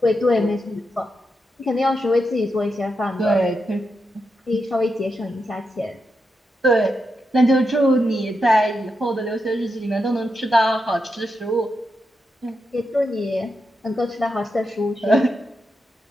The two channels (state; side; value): normal; both; correlation 0.86